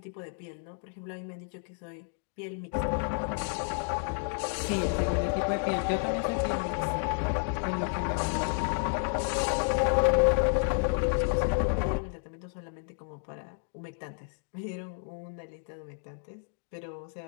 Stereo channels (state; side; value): silent; right; 57 dB below the other